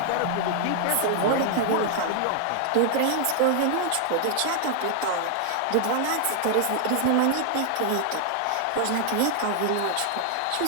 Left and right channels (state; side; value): different; both; correlation 0.00